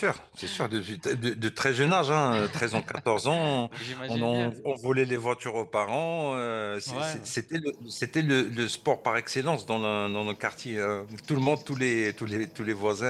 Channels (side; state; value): both; identical; correlation 1.00